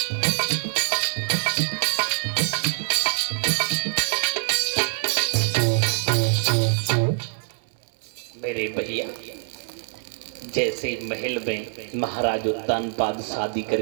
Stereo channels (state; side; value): silent; left; digital silence